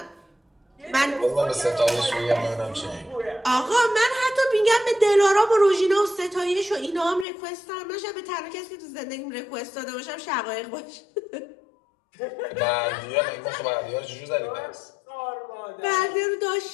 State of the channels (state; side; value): drops out; right; at 7.2 s